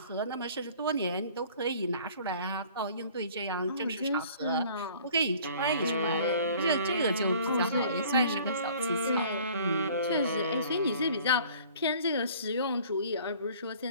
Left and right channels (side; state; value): both; inverted; correlation -0.51